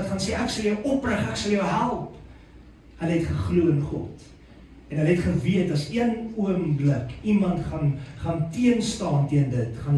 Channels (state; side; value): identical; both; correlation 1.00